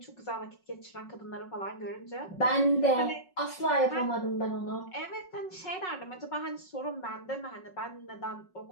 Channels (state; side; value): late; right; 5.4 ms